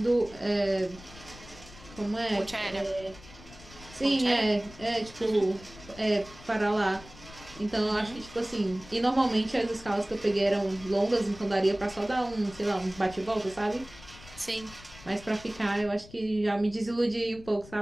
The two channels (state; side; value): noise; left; rumble, 19 dB below the sound